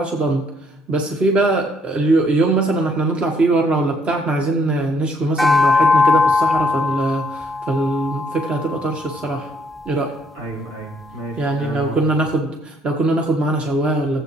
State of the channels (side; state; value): both; normal; correlation 0.67